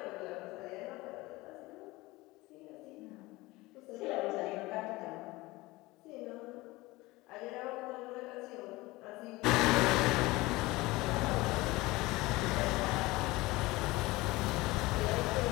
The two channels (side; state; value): right; quieter; 20.8 dB